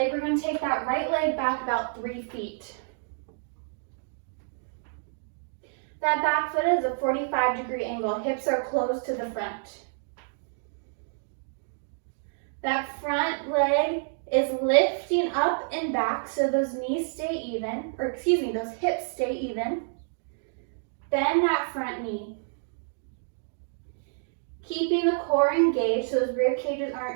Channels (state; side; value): silent; left; digital silence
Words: we're going to take that right leg back about 3 feet. That back foot is a 45-degree angle. Hips are close to the front. That front leg is lifting up and back so those knees stay even, or excuse me, those hips stay even. Bend that front knee. Keeping the core engaged so those rib cages